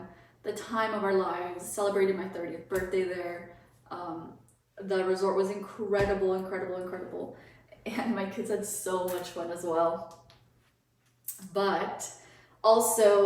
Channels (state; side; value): identical; both; correlation 1.00